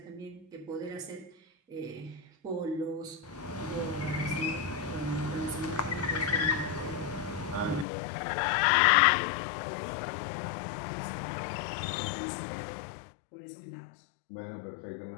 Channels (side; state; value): right; drops out; at 7.9 s